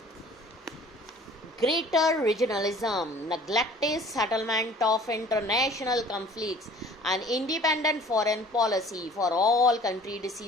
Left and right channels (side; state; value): both; normal; correlation 0.49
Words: Greater regionalism, neglected settlement of international conflicts, and independent foreign policy for all country